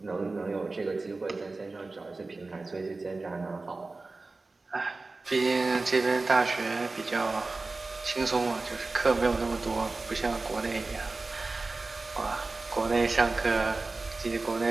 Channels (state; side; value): quieter; left; 3.5 dB